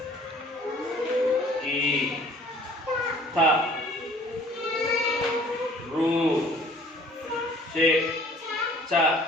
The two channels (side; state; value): both; normal; correlation 0.53